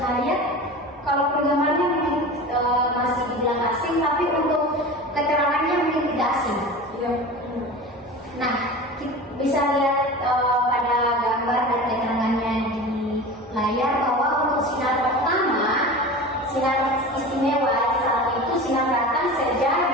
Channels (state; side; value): normal; both; correlation 0.33